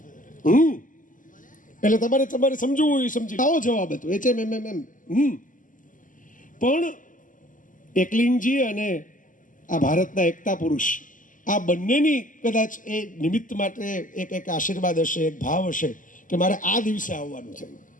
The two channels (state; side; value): late; right; 0.38 ms